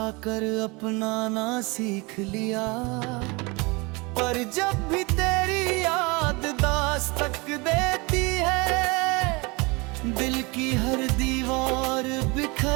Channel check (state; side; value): quieter; left; 26.9 dB